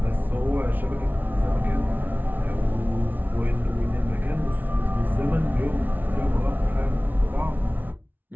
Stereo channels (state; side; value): late; left; 0.083 ms